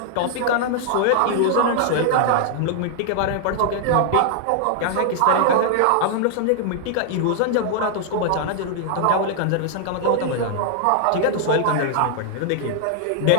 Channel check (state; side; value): different; both; correlation 0.00